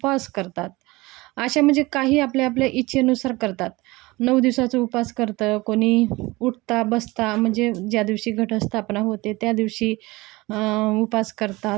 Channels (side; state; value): left; quieter; 21.6 dB